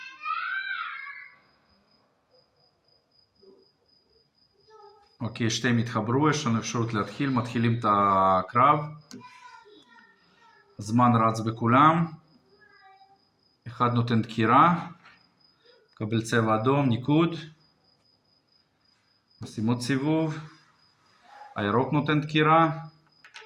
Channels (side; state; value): both; identical; correlation 1.00